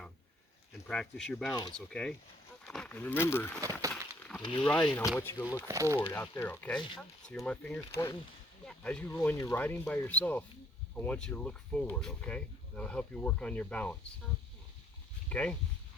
and practice your balance. Okay. And remember, when you're riding, I want you to look forward out there. Okay. See where my finger's pointing? Yeah. When you're riding by yourself, I want you to look forward, okay? That'll help you work on your balance. Okay?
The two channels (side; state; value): both; normal; correlation 0.63